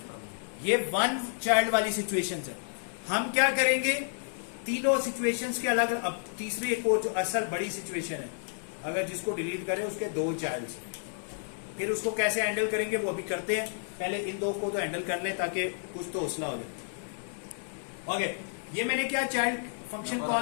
ये 1 चाइल्ड वाली सिचुएशन है। हम क्या करेंगे, तीनों सिचुएशंस के अलग, अब तीसरी एक और जो असल बड़ी सिचुएशन है, अगर जिसको डिलीट करें उसके 2 चाइल्ड, फिर उसको कैसे हैंडल करेंगे वो अभी करते हैं, पहले इन 2 को तो हैंडल कर ले ताकि कुछ तो हौसला हो जाए। ओके, ये मैंने क्या चाइल्ड फंक्शन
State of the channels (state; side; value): silent; right; digital silence